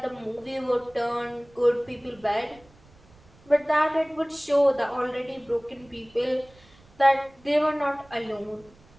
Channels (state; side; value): noise; right; rumble, 27 dB below the sound